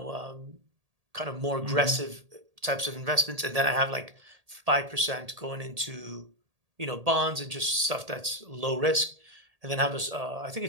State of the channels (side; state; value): left; late; 1.8 ms